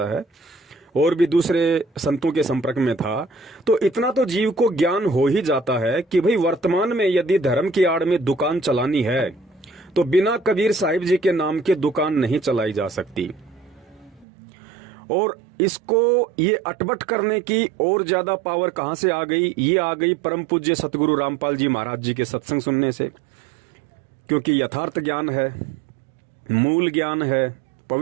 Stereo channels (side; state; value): left; drops out; at 14.2 s